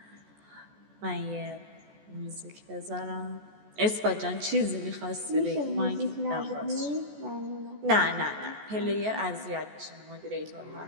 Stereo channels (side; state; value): left; late; 14 ms